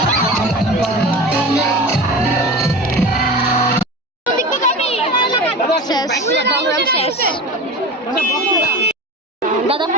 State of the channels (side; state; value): both; normal; correlation 0.31